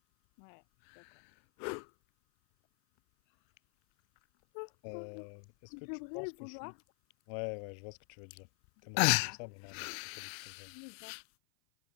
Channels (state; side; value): silent; right; 51 dB below the other